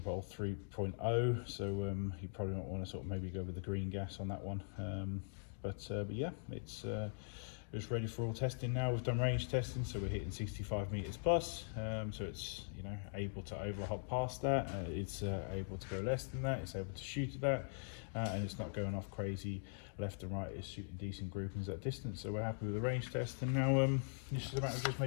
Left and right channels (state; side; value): silent; right; digital silence